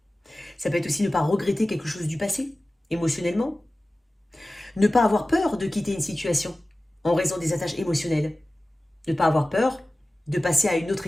Ça peut être aussi ne pas regretter quelque chose du passé, émotionnellement. Ne pas avoir peur de quitter une situation en raison des attaches émotionnelles. Ne pas avoir peur de passer à une autre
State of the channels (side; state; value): both; normal; correlation 0.96